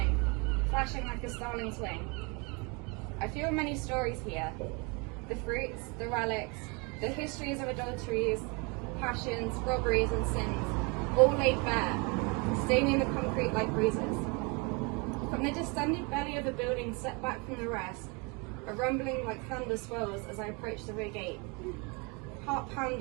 flashing like a starling's wing. I feel many stories here. The fruits, the relics, the histories of adulteries, passions, robberies and sins, all laid bare, staining the concrete like bruises. From the distended belly of a building set back from the rest, a rumbling like thunder swells as I approach the rear gate. Heart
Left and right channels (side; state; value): left; quieter; 30.2 dB